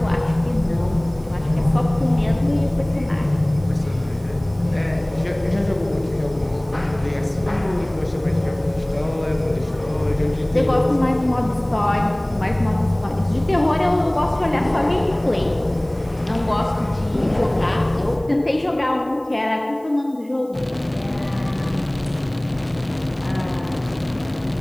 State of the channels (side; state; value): right; noise; hiss, 29 dB below the sound